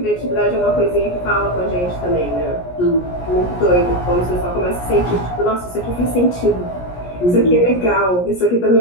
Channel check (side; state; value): right; late; 17 ms